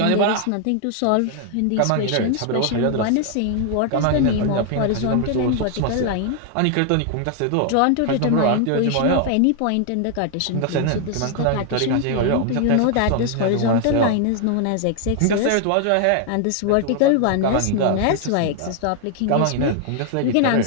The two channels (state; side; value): different; both; correlation 0.00